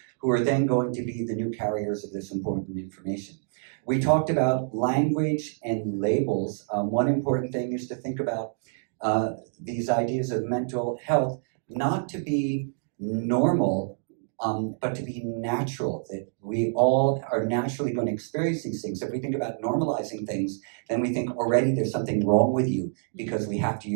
who are then going to be the new carriers of this important information. We talked about language and labels. One important thing is to think about these ideas of mental health, not to be normal, but to be natural, that we all are naturally going to experience these things. If we think about normalizing things, then we think already there's something wrong with you because we have to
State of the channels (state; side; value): silent; left; digital silence